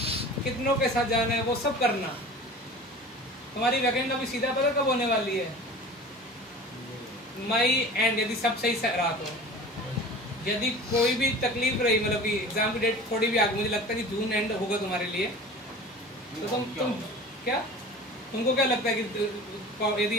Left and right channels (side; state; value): both; normal; correlation 0.39